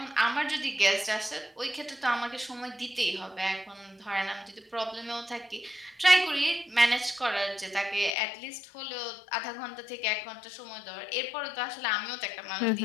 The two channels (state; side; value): drops out; right; at 8.1 s